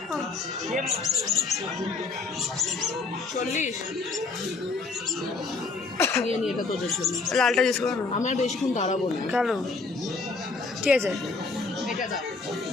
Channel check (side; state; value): right; quieter; 4.1 dB